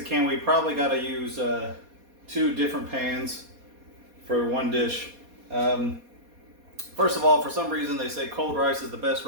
can. We probably got to use 2 different pans for one dish. First of all, for some reason they say cold rice is the best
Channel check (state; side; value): late; left; 4.2 ms